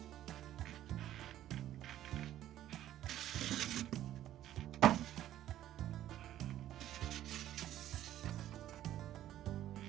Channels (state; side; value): quieter; left; 12.6 dB